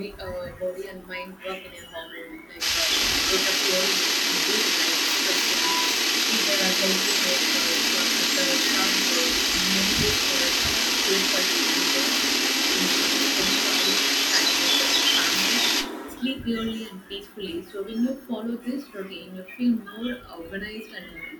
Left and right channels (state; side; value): identical; both; correlation 1.00